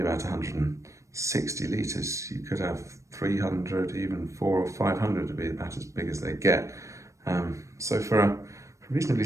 about 160 litres. You could have 300, even 400 or 500 to be about as big as they get. So for a reasonably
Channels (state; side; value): late; left; 0.15 ms